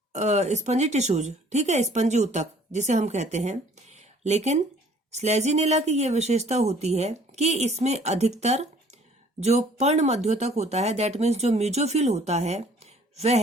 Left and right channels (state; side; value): normal; both; correlation 0.56